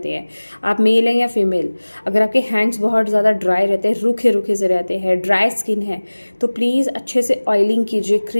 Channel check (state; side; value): inverted; both; correlation -1.00